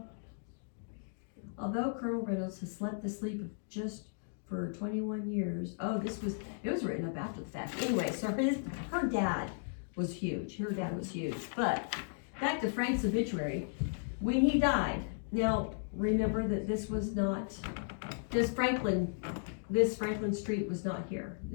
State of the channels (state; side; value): silent; right; digital silence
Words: Although Colonel Reynolds has slept the sleep of just for 21 years. Oh, it was written up after the fact. Anyway, so her dad was huge. Her dad was huge. But back to Frank's obituary. When he died, now remember that this Franklin Street was not here.